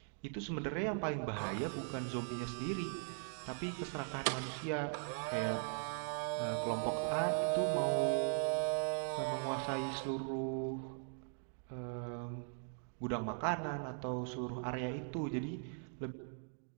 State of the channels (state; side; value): silent; left; 51 dB below the other